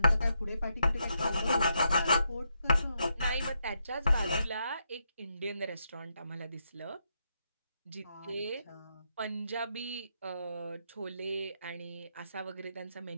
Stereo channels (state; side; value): inverted; both; correlation -0.80